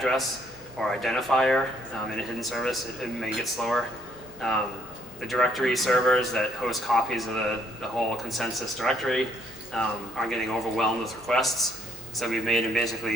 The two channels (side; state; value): both; normal; correlation 0.68